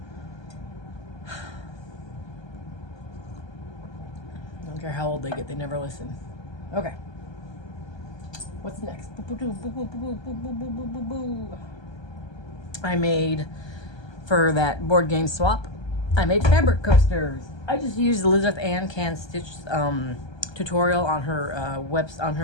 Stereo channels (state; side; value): late; right; 1.2 ms